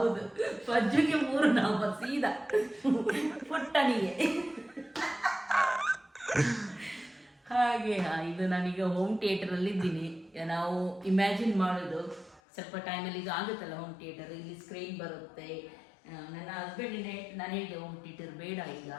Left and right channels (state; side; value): drops out; right; at 12.4 s